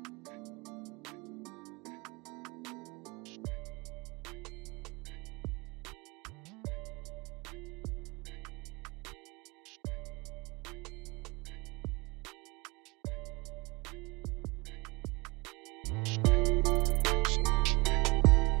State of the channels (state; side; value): quieter; left; 26.4 dB